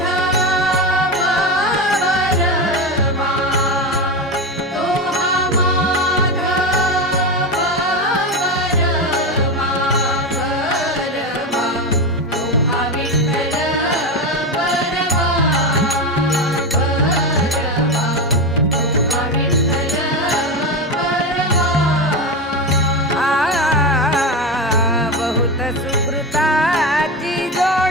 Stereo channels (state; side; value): normal; both; correlation 0.17